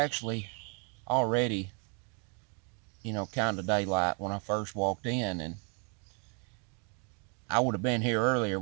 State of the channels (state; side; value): quieter; left; 37.6 dB